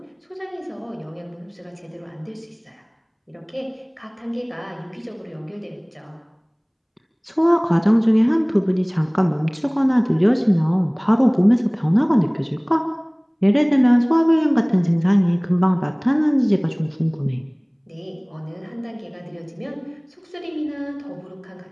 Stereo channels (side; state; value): both; identical; correlation 1.00